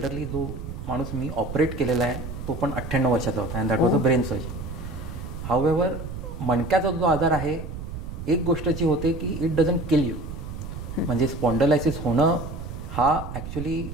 जो माणूस मी ऑपरेट केलेला आहे तो पण 98 वर्षाचा होता, and that was a brain surgery. However मणक्याचा जो आजार आहे एक गोष्ट जी होते की इट डझंट किल यू. म्हणजे स्पॉन्डलायसिस होणं हा ॲक्च्युली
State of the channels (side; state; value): right; noise; rumble, 8 dB below the sound